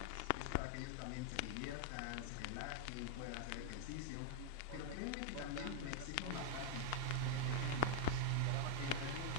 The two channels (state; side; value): different; both; correlation 0.00